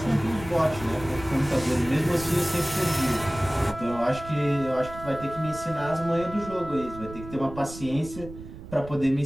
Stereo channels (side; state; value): right; noise; rumble, 14 dB below the sound